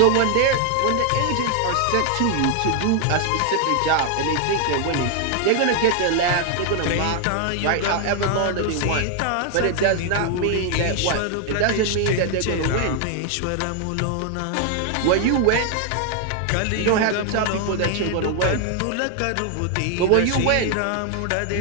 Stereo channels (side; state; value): both; different; correlation 0.00